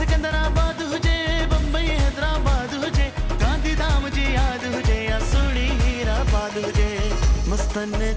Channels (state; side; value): identical; both; correlation 1.00